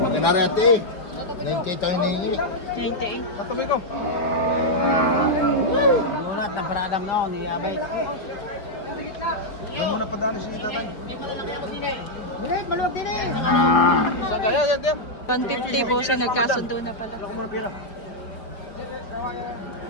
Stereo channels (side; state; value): right; late; 4.9 ms